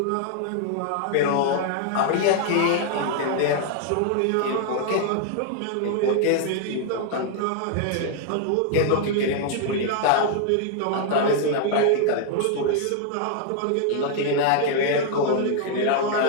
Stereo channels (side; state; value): both; different; correlation 0.00